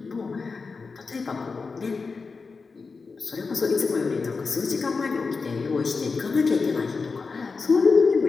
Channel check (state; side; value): quieter; right; 4.6 dB